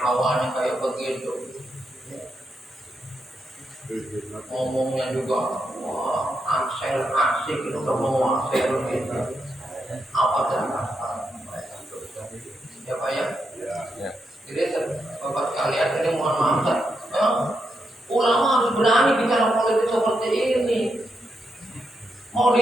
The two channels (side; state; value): both; normal; correlation 0.83